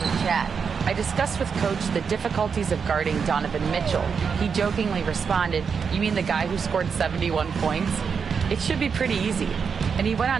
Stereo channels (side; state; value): left; quieter; 6.1 dB